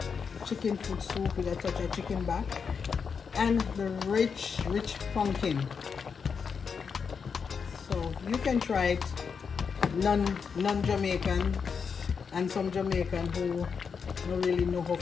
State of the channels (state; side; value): quieter; right; 6.0 dB